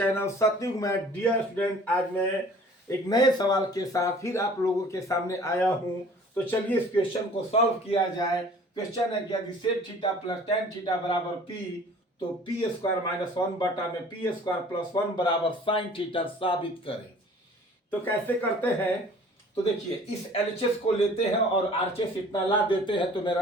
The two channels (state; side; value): normal; both; correlation 0.50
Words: Satyug में। Dear student, आज मैं एक नए सवाल के साथ फिर आप लोगों के सामने आया हूं। तो चलिए इस क्वेश्चन को सॉल्व किया जाए। क्वेश्चन है कि यदि sec theta plus tan theta बराबर पी, तो पी स्क्वायर माइनस वन बटा में पी स्क्वायर प्लस वन बराबर साइन थीटा साबित करें। तो कैसे करते हैं? तो देखिए, इस एलएचएस को लेते हैं और आरएचएस इतना ला देते हैं तो